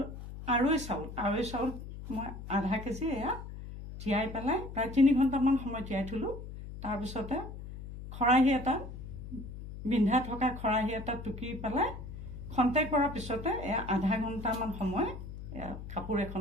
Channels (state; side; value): noise; left; hum, 11 dB below the sound